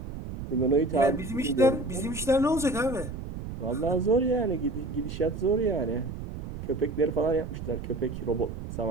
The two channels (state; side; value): noise; right; rumble, 8 dB below the sound